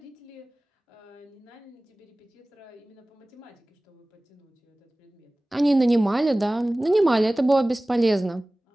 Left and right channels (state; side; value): normal; both; correlation 0.98